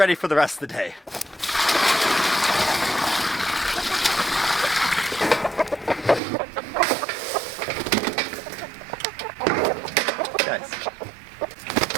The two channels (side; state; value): left; drops out; at 6.2 s